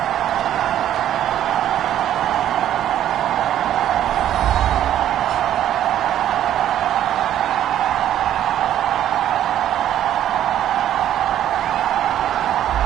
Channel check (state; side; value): quieter; left; 11.4 dB